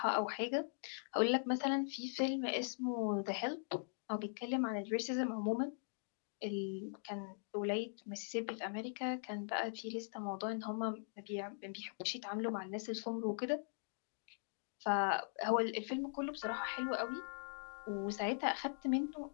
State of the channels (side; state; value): right; silent; digital silence